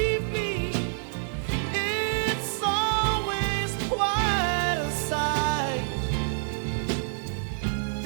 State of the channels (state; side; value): silent; left; digital silence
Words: me. It's always quite a sight.